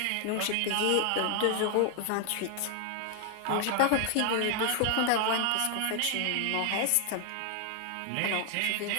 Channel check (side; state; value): both; different; correlation 0.00